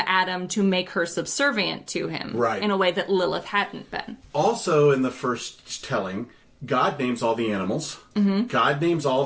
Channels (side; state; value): both; identical; correlation 1.00